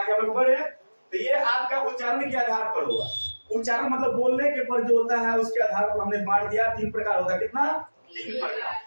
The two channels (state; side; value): inverted; both; correlation -1.00